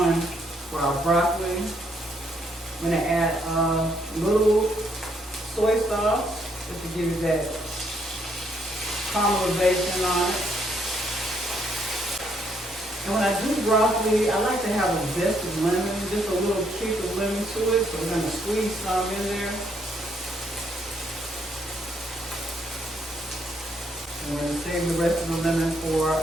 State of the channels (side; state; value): both; normal; correlation 0.72